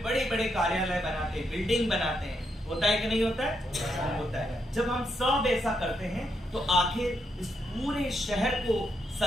बड़े बड़े कार्यालय बनाते हैं, बिल्डिंग बनाते हैं। होता है कि नहीं होता है? होता है। जब हम सब ऐसा करते हैं तो आखिर इस पूरे शहर को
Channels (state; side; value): normal; both; correlation 0.79